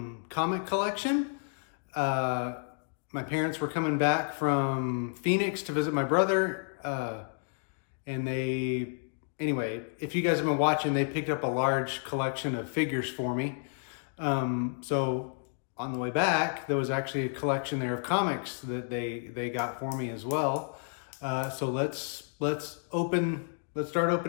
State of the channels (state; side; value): silent; right; 57 dB below the other